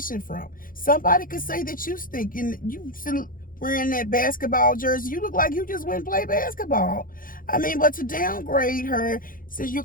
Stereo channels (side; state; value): right; late; 0.40 ms